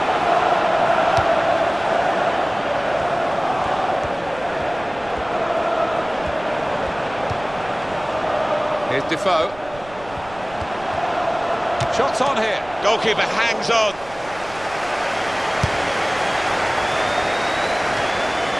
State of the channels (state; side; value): noise; right; rumble, 19 dB below the sound